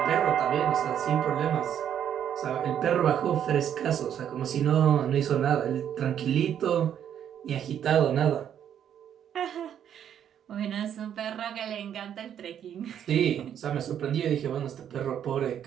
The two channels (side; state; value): left; quieter; 9.5 dB